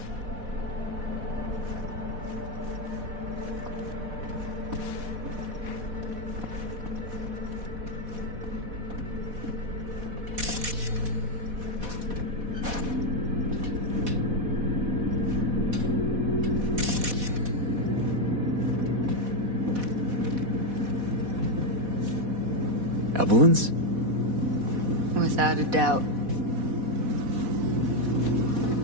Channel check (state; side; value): late; left; 4.1 ms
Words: Evelyn's? Without a doubt.